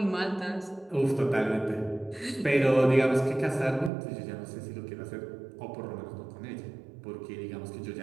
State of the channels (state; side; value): drops out; left; at 3.9 s